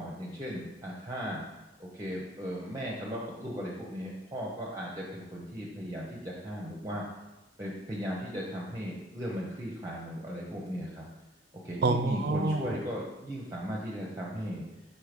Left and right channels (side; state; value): both; normal; correlation 0.55